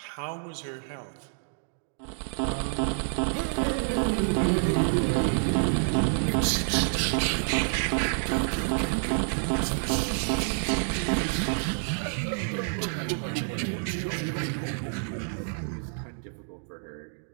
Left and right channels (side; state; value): left; silent; 59 dB below the other